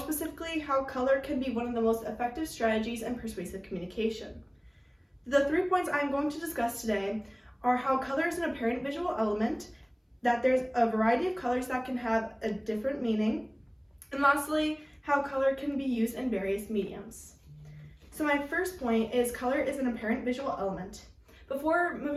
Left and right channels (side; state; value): both; identical; correlation 1.00